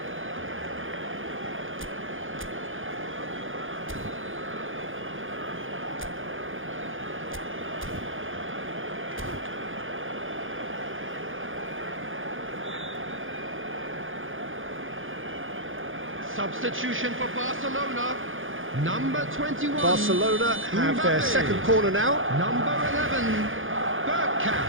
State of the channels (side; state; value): left; late; 0.58 ms